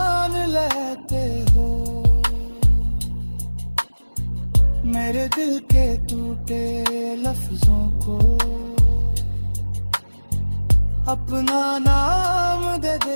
लेते हो। मेरे दिल के टूटे लफ्जों को अपना नाम दे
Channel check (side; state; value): both; inverted; correlation -1.00